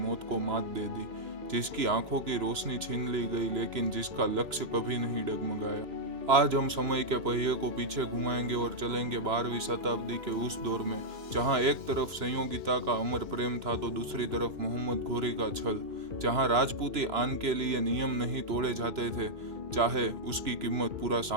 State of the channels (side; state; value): left; late; 2.9 ms